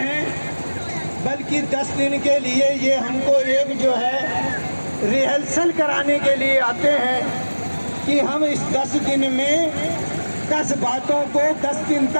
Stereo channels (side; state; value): both; inverted; correlation -1.00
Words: बल्कि 10 दिन के लिए ये हमको एक जो है रिहर्सल कराने के लिए आते हैं कि हम इस 10 दिन में 10 बातों को 10 दिन